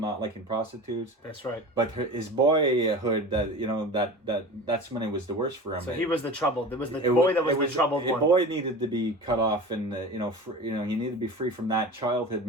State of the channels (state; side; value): normal; both; correlation 0.34